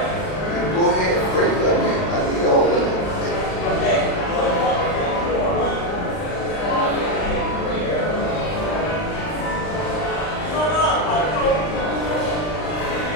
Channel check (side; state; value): right; late; 39 ms